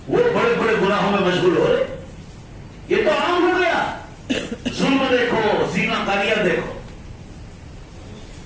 وہ بڑے بڑے گناہوں میں مشغول ہو رہے. یہ تو عام ہو گیا. ظلم دیکھو, زنا کاریاں دیکھو.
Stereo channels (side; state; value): both; identical; correlation 1.00